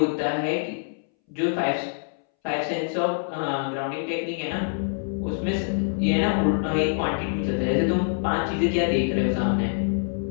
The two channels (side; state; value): right; silent; 62 dB below the other